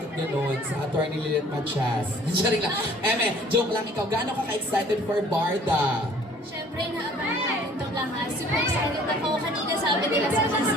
gano'n? Sa Attorney Lilith Machas. Sorry lang. Joke lang ikaw. Gaano ka ka-excited for Barda? Siyempre, naabangan natin itong lahat. Super excited ako. Kanina sabi nila sa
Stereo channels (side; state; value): both; normal; correlation 0.54